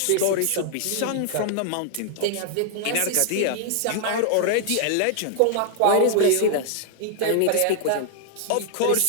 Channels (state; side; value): different; both; correlation 0.00